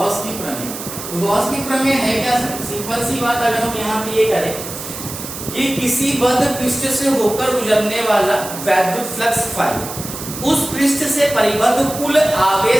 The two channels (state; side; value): noise; right; hiss, 9 dB below the sound